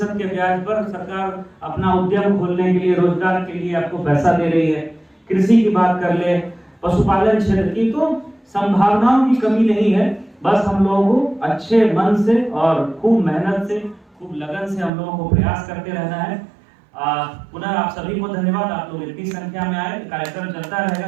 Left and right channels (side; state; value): left; drops out; at 14.9 s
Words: के ब्याज पर सरकार अपना उद्यम खोलने के लिए, रोजगार के लिए आपको पैसा दे रही है। कृषि की बात कर ले, पशुपालन क्षेत्र की, तो संभावनाओं की कमी नहीं है। बस हम लोगों को अच्छे मन से और खूब मेहनत से, खूब लगन से हम लोगों को प्रयास करते रहना है। पुनः आप सभी को धन्यवाद, आप लोग इतनी संख्या में आए। कार्यक्रम चलता रहेगा